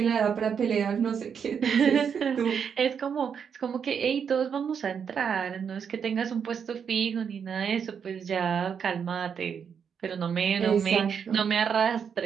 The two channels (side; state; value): left; quieter; 7.1 dB